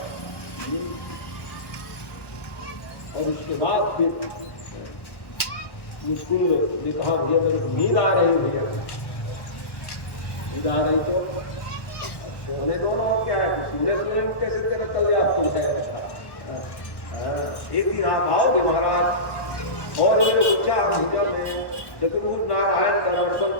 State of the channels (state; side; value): late; right; 1.1 ms